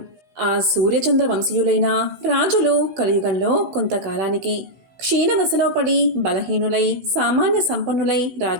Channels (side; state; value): left; late; 16 ms